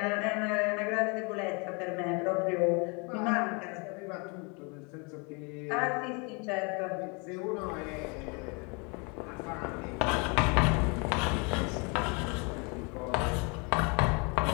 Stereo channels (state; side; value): quieter; right; 32.0 dB